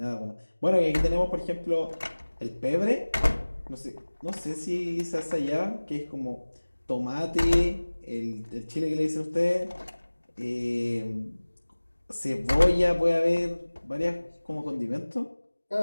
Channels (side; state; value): both; inverted; correlation -1.00